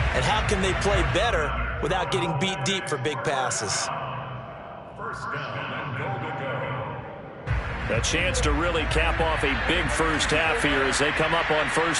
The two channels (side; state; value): both; identical; correlation 1.00